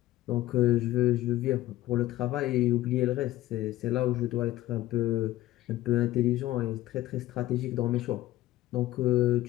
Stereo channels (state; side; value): quieter; right; 15.7 dB